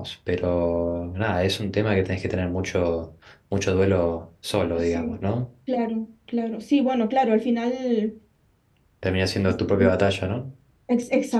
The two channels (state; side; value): identical; both; correlation 1.00